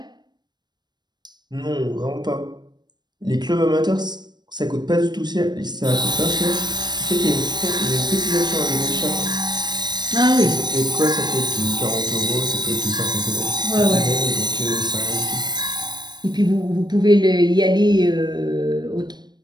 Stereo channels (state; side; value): late; left; 0.21 ms